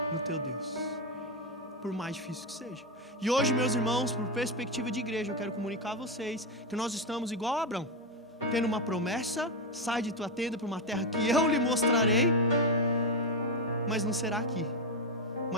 no teu Deus, por mais difícil que seja. E hoje, meus irmãos, por perspectiva de igreja, eu quero comunicar a vocês que nós estamos igual a Abraão, tendo uma promessa: sai de tua tenda para uma terra que eu lhe mostrarei. Mas não será aqui.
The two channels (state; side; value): normal; both; correlation 0.08